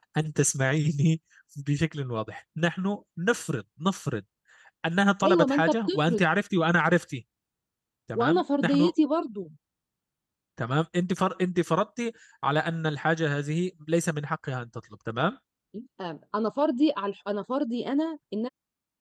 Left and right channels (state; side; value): identical; both; correlation 1.00